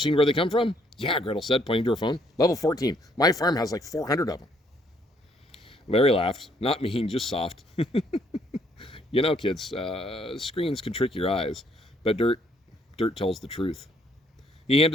where they come from? Yeah, Gretel said, pointing to her phone. Level 14. My farm has like 400 of them. Larry laughed. Not mean, just soft. You know, kids, screens can trick your eyes, but dirt tells the truth. He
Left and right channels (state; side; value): normal; both; correlation 0.67